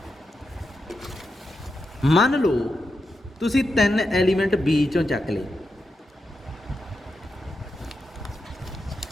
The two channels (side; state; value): both; normal; correlation 0.87